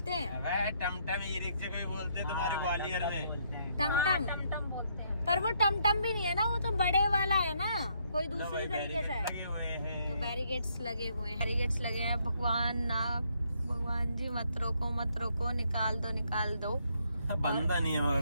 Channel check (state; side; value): inverted; both; correlation -0.72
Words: हैं। टमटम ई रिक्शा को भी बोलते हैं तुम्हारे ग्वालियर में। टमटम बोलते हैं, पर वो टमटम भी नहीं है ना, वो तो बड़े वाला है ना, कोई दूसरी तरीके से है। तो बैरिकेड्स लगे हुए हैं। भगवान जी मत रोको, निकाल दो। बंदा नहीं है